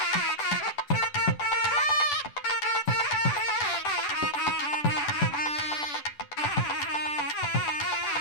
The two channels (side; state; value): right; late; 10 ms